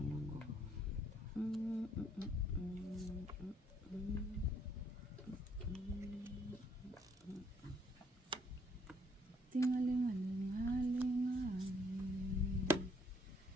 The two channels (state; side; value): normal; both; correlation 0.66